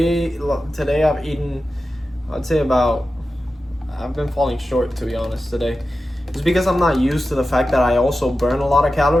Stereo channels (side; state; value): both; normal; correlation 0.93